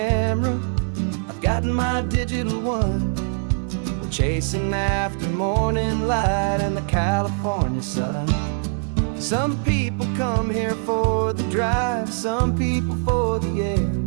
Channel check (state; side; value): silent; left; 64 dB below the other